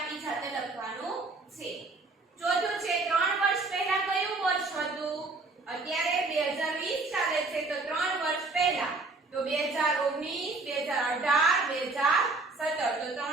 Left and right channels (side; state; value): left; quieter; 3.5 dB